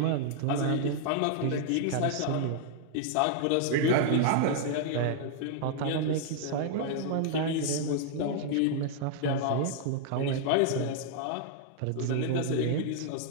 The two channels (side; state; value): both; different; correlation -0.01